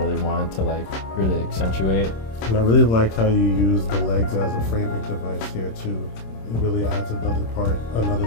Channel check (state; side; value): late; right; 26 ms